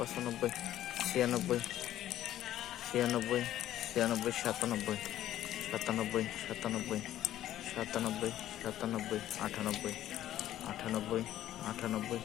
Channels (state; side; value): quieter; right; 12.8 dB